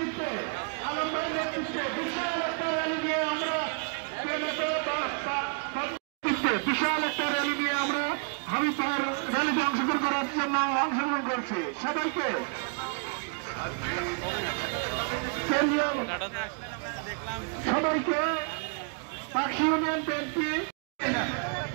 বিশাল একটা র্যালি নিয়ে আমরা হাবিবপুর র্যালিতে অংশগ্রহণ করার জন্য অংশগ্রহণ করছি। সবাইকে সবাইকে পাখি ইউনিয়ন বিএনপি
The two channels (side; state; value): left; quieter; 39.9 dB